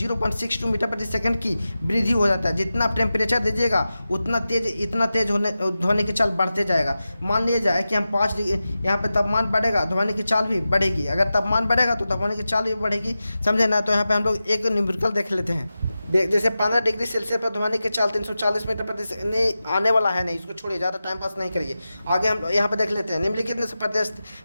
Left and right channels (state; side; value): inverted; both; correlation -0.94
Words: मीटर प्रति सेकंड की वृद्धि हो जाता है। जितना आप टेम्परेचर दीजिएगा इतना तेज होने ध्वनि की चाल बढ़ते जाएगा। मान लिया जाए कि हम 5 डिग्री यहाँ पे तापमान बढ़ेगा, ध्वनि की चाल भी बढ़ेगी। अगर तापमान बढ़ेगा तो ध्वनि की चाल भी बढ़ेगी, समझे ना। तो यहाँ पे हम लोग एक न्यूमेरिकल देख लेते हैं। जैसे 15 डिग्री सेल्सियस पर ध्वनि की चाल 340 मीटर प्रति सेकंड नहीं आने वाला है, नहीं, इसको छोड़िए, ज़्यादा टाइम पास नहीं करिए। आगे हम यहाँ पे देख लेते हैं। निम्नलिखित में से